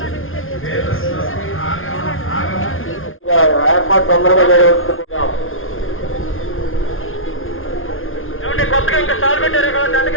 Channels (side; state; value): right; late; 0.59 ms